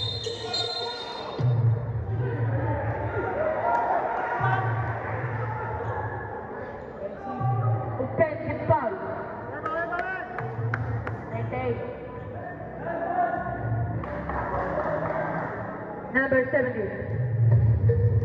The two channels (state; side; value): identical; both; correlation 1.00